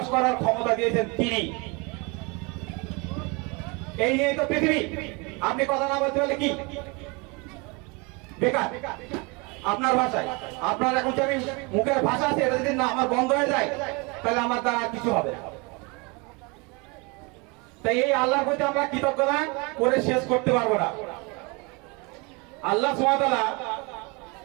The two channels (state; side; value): quieter; left; 29.1 dB